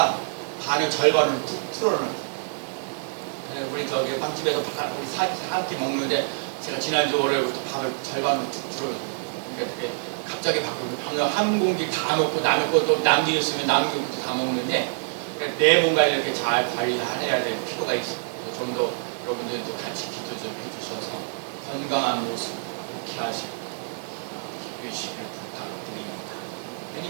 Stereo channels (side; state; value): left; silent; 61 dB below the other